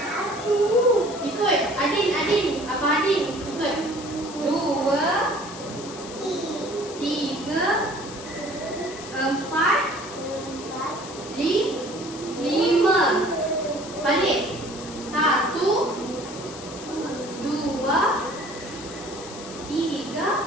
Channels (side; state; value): left; noise; hiss, 14 dB below the sound